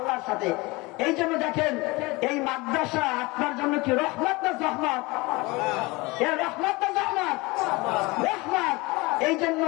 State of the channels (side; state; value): right; quieter; 23.7 dB